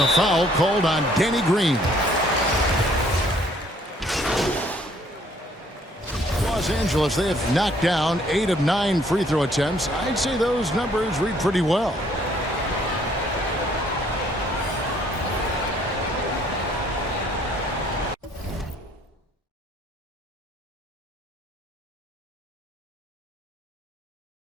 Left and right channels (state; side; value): normal; both; correlation 0.62